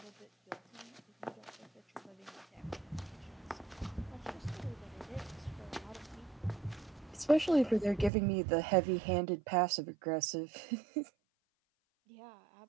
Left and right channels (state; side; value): drops out; left; at 8.1 s